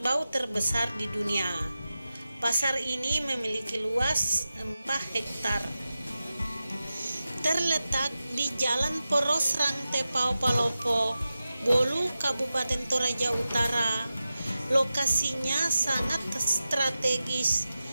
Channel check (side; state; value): both; inverted; correlation -0.94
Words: terbesar di dunia. Pasar ini memiliki luas 4 hektar. Terletak di Jalan Poros Rangtepao Palopo, Bolu, Kabupaten Toraja Utara. Lokasinya sangat strategis